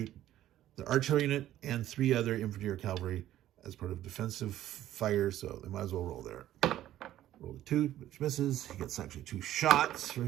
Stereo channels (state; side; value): quieter; left; 13.1 dB